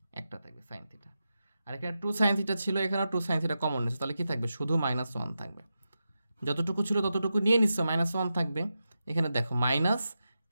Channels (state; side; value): inverted; both; correlation -0.89